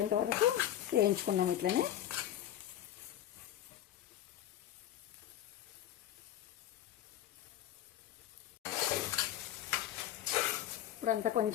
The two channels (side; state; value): right; quieter; 12.0 dB